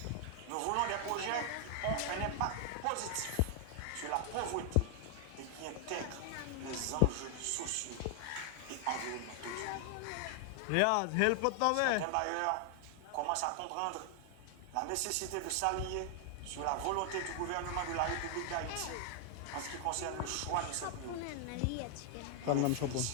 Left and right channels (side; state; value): both; different; correlation 0.00